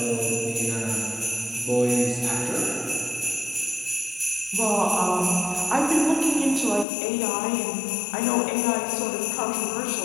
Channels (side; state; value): right; drops out; at 6.9 s